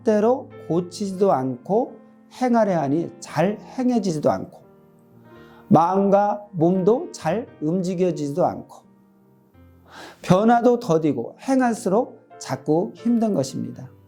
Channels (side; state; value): both; identical; correlation 1.00